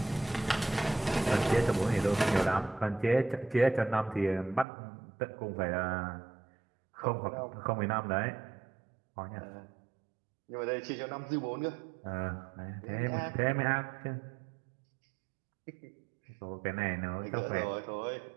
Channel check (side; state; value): left; drops out; at 4.7 s